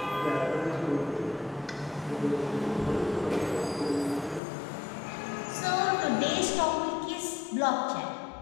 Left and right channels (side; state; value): right; drops out; at 4.4 s